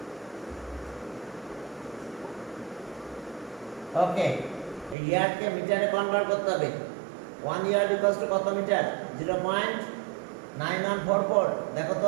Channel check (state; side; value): drops out; left; at 5.0 s